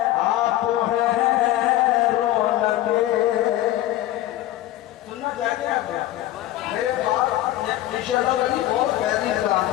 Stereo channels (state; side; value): quieter; right; 14.5 dB